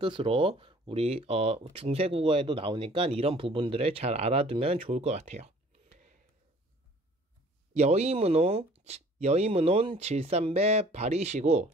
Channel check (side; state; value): both; normal; correlation 0.53